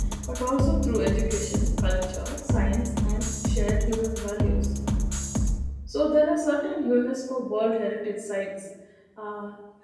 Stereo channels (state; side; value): identical; both; correlation 1.00